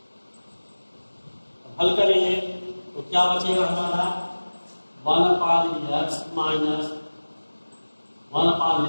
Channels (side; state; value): both; inverted; correlation -1.00